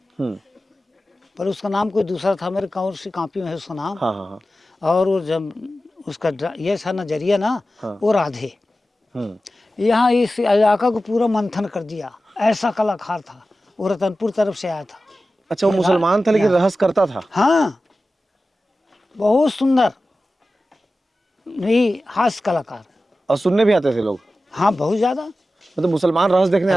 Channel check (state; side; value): normal; both; correlation 0.94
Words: पर उसका नाम कोई दूसरा था, मेरे कौन सी कॉपी में है उसका नाम। हाँ हाँ हाँ। और वो जब उसका ये था नजरिया ना, वो राधे। यहाँ इस इलाका को पूरा मंथन कर दिया, ऐसा कलाकार था वो, रतनपुर तरफ से आया था। अच्छा, वो मुसलमान था लेकिन रहस्य करता था। हाँ, बहुत सुंदर नहीं हास्य कलाकार। और सुनने भी आते थे लोग, हाँ, बहुत ज्यादा। मतलब मुसलमान रहस्य देखने